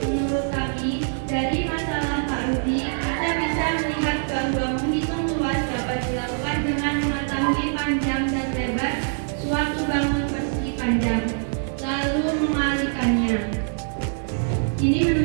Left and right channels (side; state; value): left; silent; digital silence